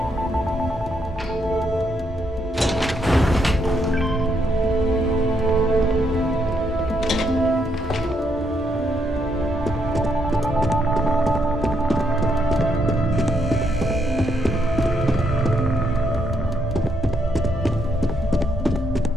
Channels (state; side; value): normal; both; correlation 0.76